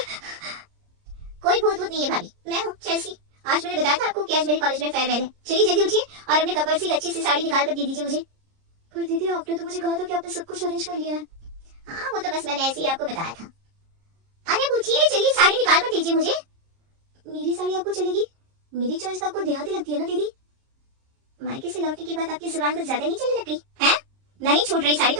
कोई भूत नहीं है भाभी, मैं हूँ चेल्सी। आज मैंने बताया था आपको कि आज मेरे कॉलेज में फेयरवेल है। चलिए जल्दी उठिए और अपने कपड़ से एक अच्छी सी साड़ी निकाल कर दे दीजिए मुझे। पर दीदी, आपने तो मुझे कहा था कि आपने सब कुछ अरेंज कर लिया है। हाँ, वो तो बस मैंने ऐसे ही आपको बताया था। अरे उठिए, चलिए साड़ी निकाल कर दीजिए मुझे। मेरी साड़ी आपको चलेगी? मेरी चॉइस तो आपको देहाती लगती है ना दीदी। मायके से लौटने के बाद आपकी जुबान कुछ ज्यादा नहीं चलने लग गई है? नहीं छूट रही साड़ी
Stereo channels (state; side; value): late; left; 30 ms